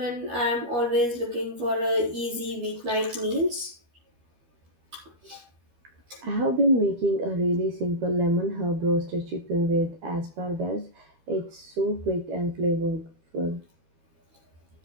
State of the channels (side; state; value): left; late; 13 ms